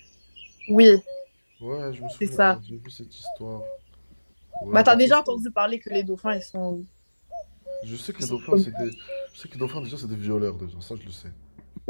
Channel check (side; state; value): both; inverted; correlation -1.00